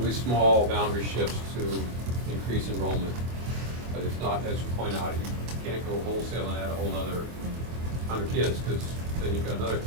small boundary shifts to increase enrollment. But it's not, as you point out, you can't go wholesale and add a whole nother 100 kids, because then you've got another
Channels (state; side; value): late; left; 24 ms